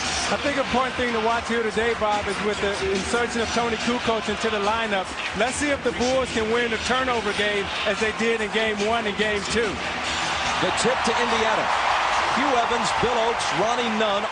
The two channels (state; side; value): identical; both; correlation 1.00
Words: I think an important thing to watch here today, Bob, is with the insertion of Tony Kukoc into the lineup. Let's see if the Bulls can win the turnover game as they did in Game 1 and Game 2. The tip to Indiana. Hugh Evans, Bill Oakes, Ronnie Nunn